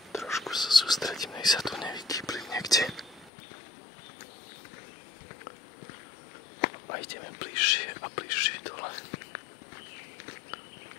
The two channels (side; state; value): right; drops out; at 3.3 s